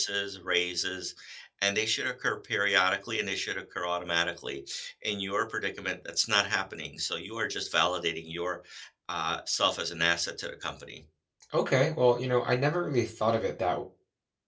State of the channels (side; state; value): both; identical; correlation 1.00